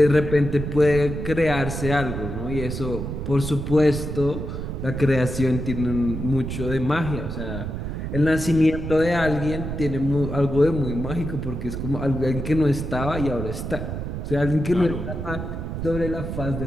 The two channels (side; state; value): right; noise; rumble, 5 dB below the sound